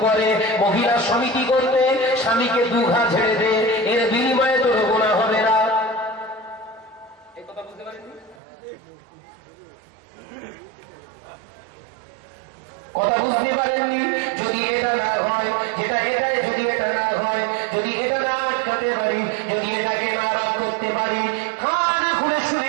করে মহিলা সমিতি করতে, স্বামীকে 2 ঘা ঝেড়ে দে, এর বিনিময়ে তোর গুনাহ হবে না। এই কথা বুঝতে পারেননি? কথা বুঝতে পারেননি? যদি এটা না হয়, যেটা এটাই যদি এটা না হয়, যদি এটা না আটকাতে পারি, যদি এটাকে না রদ করতে পারি, কানে খুলে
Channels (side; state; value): left; drops out; at 8.4 s